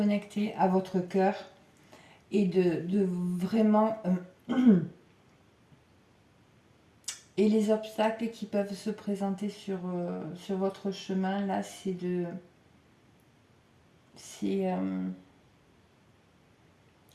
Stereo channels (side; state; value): both; identical; correlation 1.00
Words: à votre cœur et de vraiment... et les obstacles qui peuvent se présenter sur votre chemin, là, c'est de... C'est...